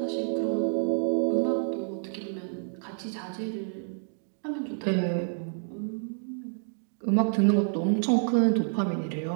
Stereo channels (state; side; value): silent; left; digital silence